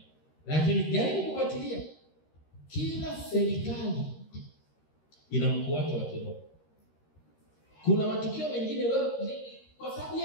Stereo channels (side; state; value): right; late; 13 ms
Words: Lakini jaribu kufuatilia. Kila serikali ina mkuu wake wa kiroho. Kuna matukio mengine wewe kwa sababu